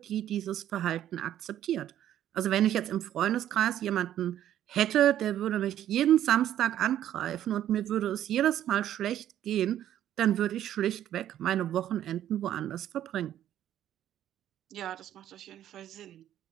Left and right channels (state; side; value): quieter; left; 11.5 dB